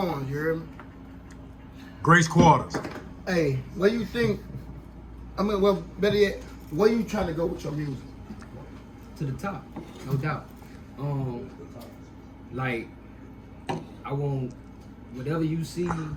you hear me? Grace Quarters. Hey, what you think? I mean, well, better yet, where you trying to go with your music? To the top, no doubt. Like, I want whatever you see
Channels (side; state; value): both; identical; correlation 1.00